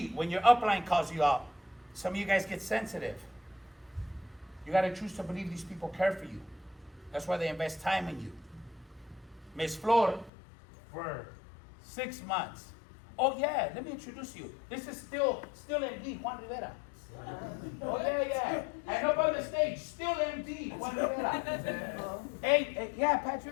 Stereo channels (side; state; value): right; drops out; at 10.3 s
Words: when your upline calls you out, some of you guys get sensitive. You got to choose to believe these people care for you. That's why they invest time in you. Miss Flor, for 6 months. Oh, yeah, let me introduce you. This is still MD, Juan Rivera. Oh, yeah. And up on the stage, still MD, Juan Rivera. Hey, yeah,